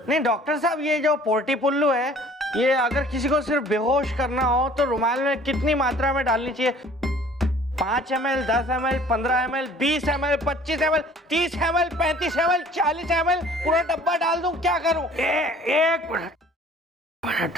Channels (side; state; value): both; normal; correlation 0.51